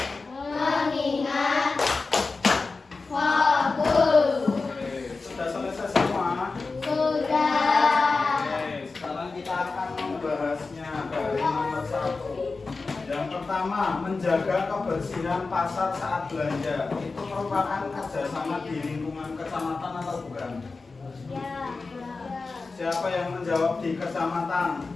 mengingat, fokus. Oke, sudah selesai semua? Sudah. Oke, sekarang kita akan membahasnya dari nomor 1. Yang pertama, menjaga kebersihan pasar saat belanja. Itu merupakan kerjasama di lingkungan kecamatan atau bukan? Ya. Siapa yang menjawab di kecamatan?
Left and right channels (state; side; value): quieter; right; 4.0 dB